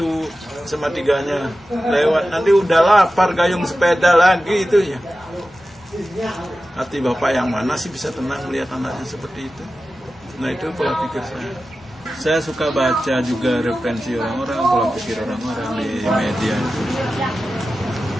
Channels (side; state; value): both; normal; correlation 0.94